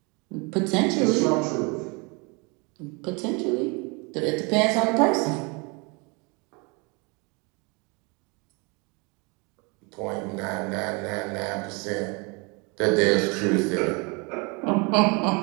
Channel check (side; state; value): left; quieter; 30.1 dB